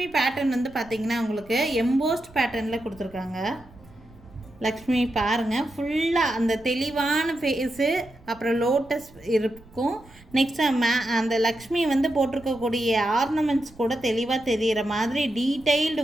பேட்டர்ன் பார்த்திங்கன்னா உங்களுக்கு எம்போஸ்ட் பேட்டர்னில் கொடுத்துருக்காங்க. லக்ஷ்மி பாருங்கள், ஃபுல்லாக அந்த தெளிவான ஃபேஸு, அப்புறம் லோட்டஸ் இருக்கும். நெக்ஸ்ட் அந்த லக்ஷ்மி போட்டிருக்கக்கூடிய ஆர்னமெண்ட்ஸ் கூட தெளிவாக தெரிகிற மாதிரி டீட்டெயில்டு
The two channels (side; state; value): right; noise; rumble, 24 dB below the sound